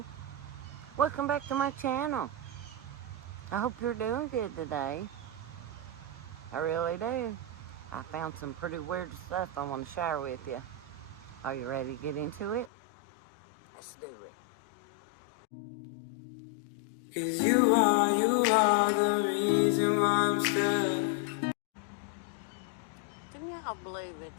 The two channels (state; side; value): drops out; right; at 12.7 s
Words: Welcome back to my channel. I hope you're doing good today. I really do. I found some pretty weird stuff I want to share with you. Are you ready to get into it? Let's do it. 'Cause you are the reason why I'm still. Can y'all believe it?